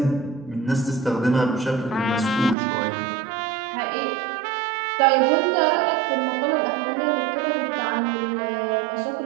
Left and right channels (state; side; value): drops out; left; at 2.6 s